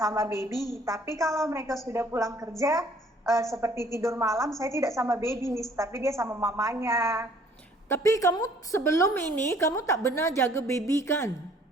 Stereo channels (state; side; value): normal; both; correlation 0.58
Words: baby. Tapi kalau mereka sudah pulang kerja, seperti tidur malam, saya tidak sama baby, Miss, tapi dia sama mamanya. Tapi kamu sebelum ini, kamu tak benar jaga baby kan?